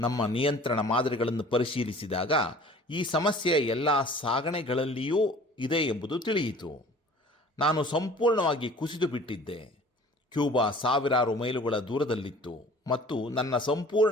ನಿಯಂತ್ರಣ ಮಾದರಿಗಳನ್ನು ಪರಿಶೀಲಿಸಿದಾಗ ಈ ಸಮಸ್ಯೆ ಎಲ್ಲ ಸಾಗಣೆಗಳಲ್ಲಿಯೂ ಇದೆ ಎಂಬುದು ತಿಳಿಯಿತು. ನಾನು ಸಂಪೂರ್ಣವಾಗಿ ಕುಸಿದು ಬಿಟ್ಟಿದ್ದೆ. ಕ್ಯೂಬಾ ಸಾವಿರಾರು ಮೈಲುಗಳ ದೂರದಲ್ಲಿತ್ತು ಮತ್ತು ನನ್ನ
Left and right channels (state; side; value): normal; both; correlation 0.48